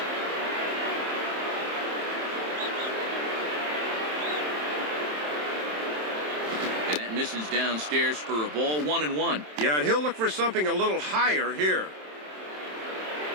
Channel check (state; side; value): late; left; 27 ms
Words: And that misses downstairs for a ball, 1-1. Yeah, and he'll look for something a little higher here.